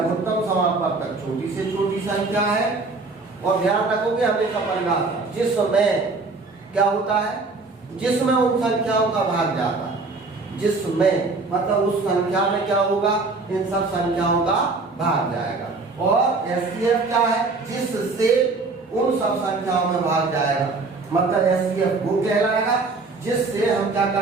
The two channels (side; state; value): left; quieter; 3.8 dB